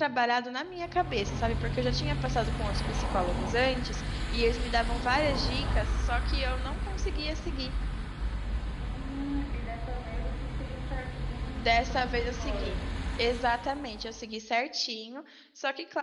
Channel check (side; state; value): both; identical; correlation 1.00